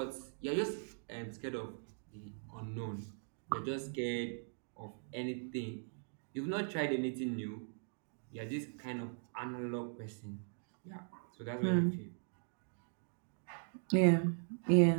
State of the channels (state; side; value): silent; left; digital silence